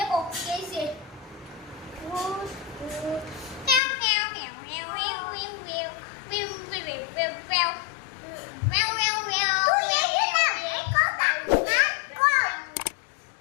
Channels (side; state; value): right; drops out; at 3.8 s